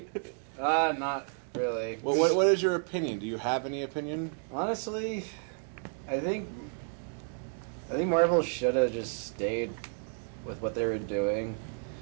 Not really. Well, what is your opinion? Do you have any opinion? Honestly, I think Marvel should have just stayed with what they were doing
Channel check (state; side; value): silent; left; 57 dB below the other